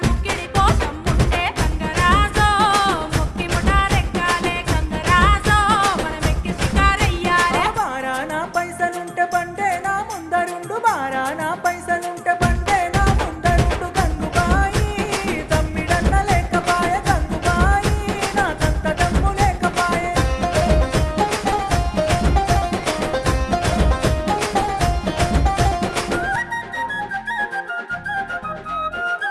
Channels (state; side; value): identical; both; correlation 1.00